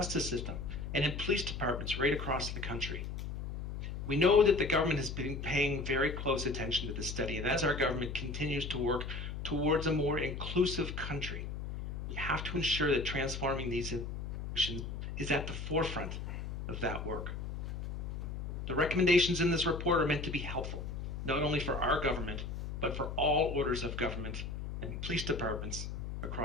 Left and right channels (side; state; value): left; noise; hum, 5 dB below the sound